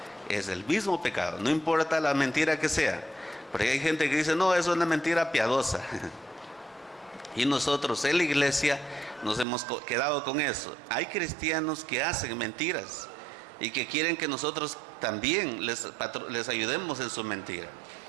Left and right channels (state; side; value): drops out; left; at 9.5 s